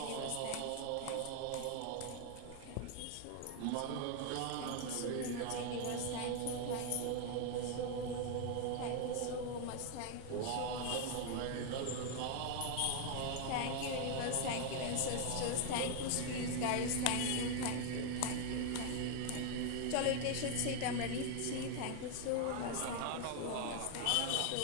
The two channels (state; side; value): different; both; correlation 0.00